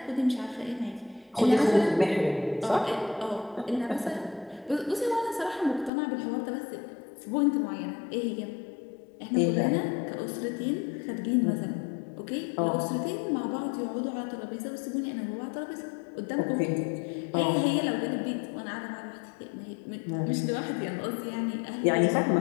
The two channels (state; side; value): drops out; right; at 5.9 s